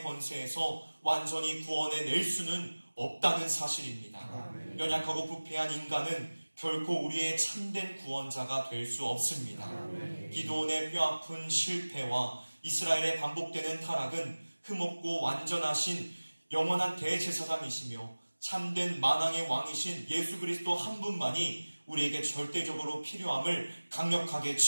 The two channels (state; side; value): inverted; both; correlation -1.00